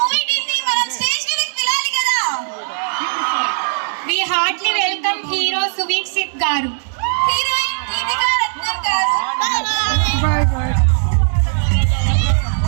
టీం ని మనం స్టేజ్ మీదకి పిలాలి కదా. We heartily welcome hero Suvikshit garu. Heroine Deepika Ratnan గారు.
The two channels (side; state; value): left; silent; digital silence